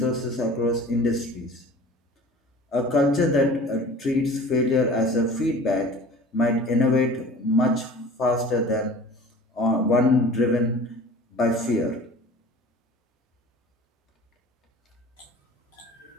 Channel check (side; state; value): both; normal; correlation 0.43